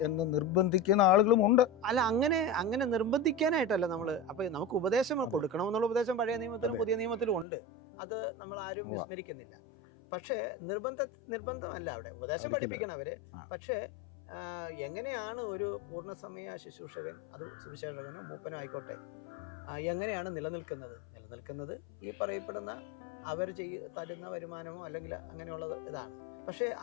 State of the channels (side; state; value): right; drops out; at 7.5 s